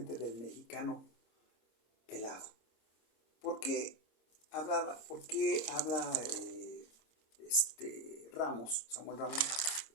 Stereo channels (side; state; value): right; late; 26 ms